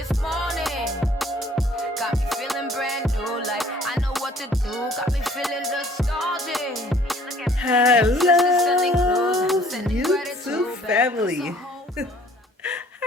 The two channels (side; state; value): both; normal; correlation 0.57